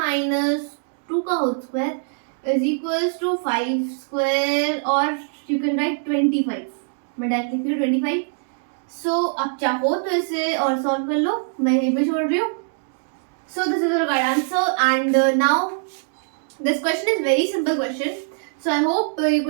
2 का whole square is equals to 5 square और यू कैन राइट 25, मैं डायरेक्ट लिख रही हूँ 25। सो आप चाहो तो इसे और सॉल्व कर लो, मैं यहीं पे छोड़ रही हूँ। सो this is your right answer and now this question is very simple question. So I hope ये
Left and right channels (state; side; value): silent; left; digital silence